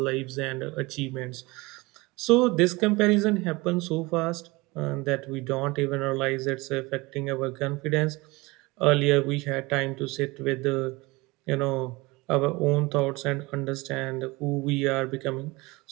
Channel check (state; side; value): quieter; left; 23.1 dB